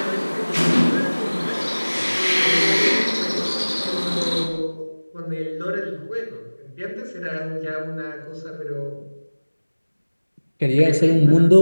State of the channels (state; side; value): inverted; both; correlation -1.00